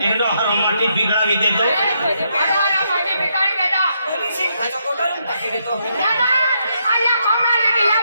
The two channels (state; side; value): inverted; both; correlation -0.78